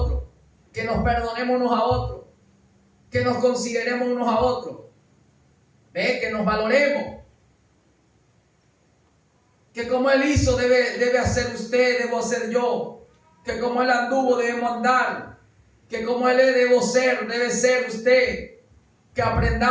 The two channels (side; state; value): both; identical; correlation 1.00